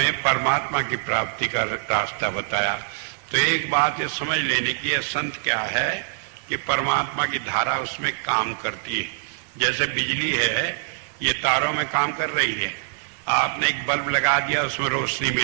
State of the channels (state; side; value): silent; left; digital silence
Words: परमात्मा की प्राप्ति का रास्ता बताया। तो एक बात ये समझ लेने की है, संत क्या है कि परमात्मा की धारा उसमें काम करती है। जैसे बिजली है, ये तारों में काम कर रही है। आपने एक बल्ब लगा दिया, उसमें रोशनी